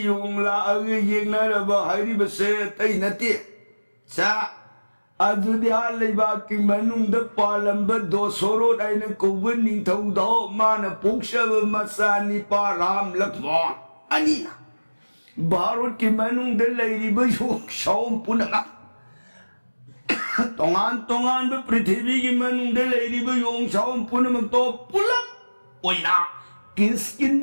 लाग यज्ञ रबा हाई बसे तई नती चा अदुदिया लेबाग की मनुंग पालंब दो सोरो दाइन कोबन निंथौदो मान पोक्षब मसानी पा राम लक्ष्मण अनीना भारत की मनुंग लेरिब योग शौम पुनगा तोंगान तोंगान ब पृथ्वी की मनुंग लेरिब योग शौम पुनमक तो पुलक ओइना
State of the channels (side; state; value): both; inverted; correlation -1.00